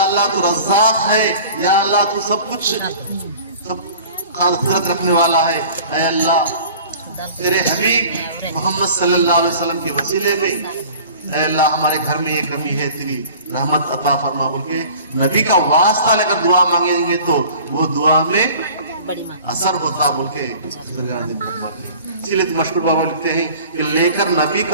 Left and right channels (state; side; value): inverted; both; correlation -0.45